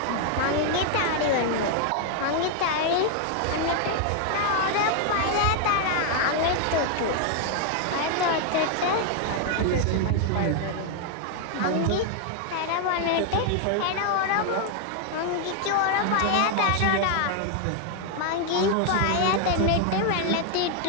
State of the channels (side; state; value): both; different; correlation 0.00